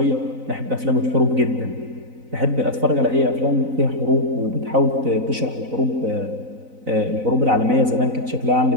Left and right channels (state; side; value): late; left; 4.0 ms